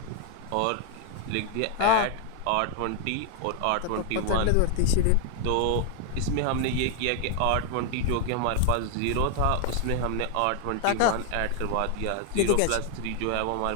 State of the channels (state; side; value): different; both; correlation 0.00